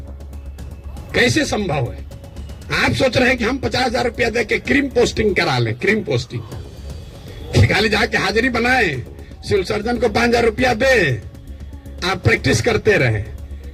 कैसे संभव है? आप सोच रहे हैं कि हम 50,000 रुपया दे के क्रीम पोस्टिंग करा लें, क्रीम पोस्टिंग खाली जाके हाजिरी बनाए, सिविल सर्जन को 5,000 रुपया दे, आप प्रैक्टिस करते रहे।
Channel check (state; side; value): identical; both; correlation 1.00